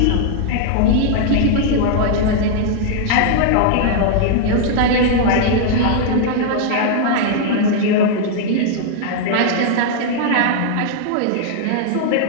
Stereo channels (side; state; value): both; different; correlation -0.01